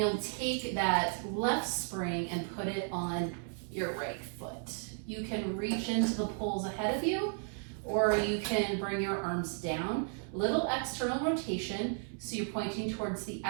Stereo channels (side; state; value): left; silent; 55 dB below the other